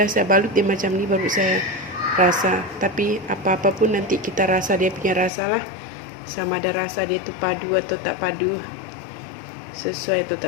saya balut dia macam ni baru saya rasa. Tapi apa-apa pun nanti kita rasa dia punya rasa lah. Sama ada rasa dia tu padu atau tak padu, sesuai atau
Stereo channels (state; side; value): drops out; right; at 5.3 s